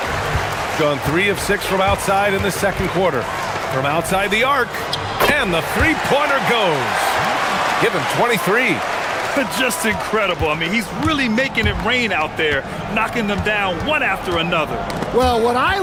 Gone 3 of 6 from outside in the second quarter. From outside the arc, and the three-pointer goes. Give him 23. Just incredible. I mean, he's really making it rain out there, knocking them down one after another. Well, what I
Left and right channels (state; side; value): identical; both; correlation 1.00